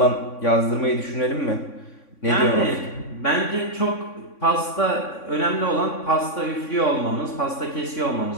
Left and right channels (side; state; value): right; late; 3.6 ms